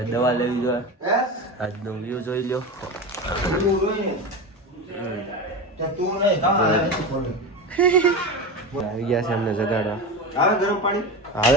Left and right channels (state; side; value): normal; both; correlation 0.23